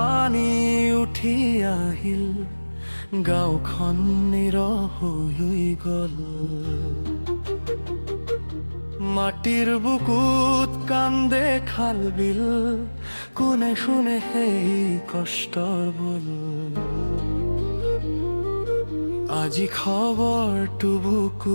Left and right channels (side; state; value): both; inverted; correlation -1.00